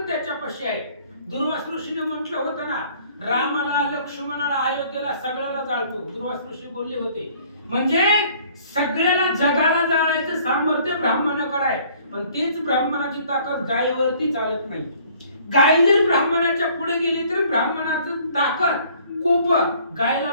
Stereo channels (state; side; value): inverted; both; correlation -0.57